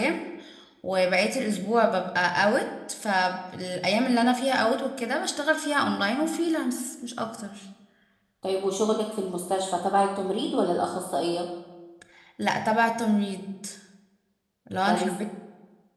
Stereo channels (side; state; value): both; identical; correlation 1.00